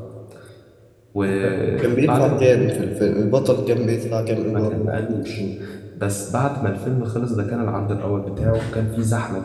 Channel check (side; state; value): both; identical; correlation 1.00